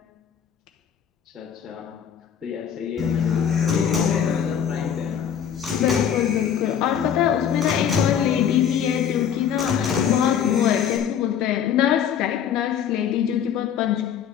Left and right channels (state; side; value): quieter; right; 8.6 dB